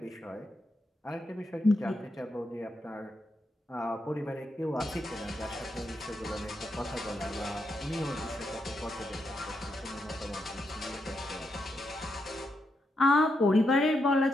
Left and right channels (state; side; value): normal; both; correlation 0.82